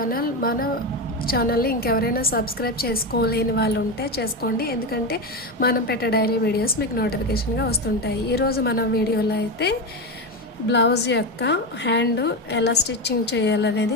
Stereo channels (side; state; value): both; normal; correlation 0.15